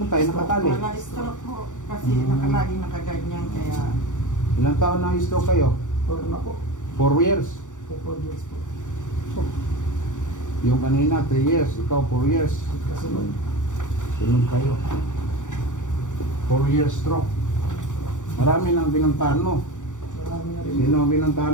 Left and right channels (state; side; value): late; right; 0.86 ms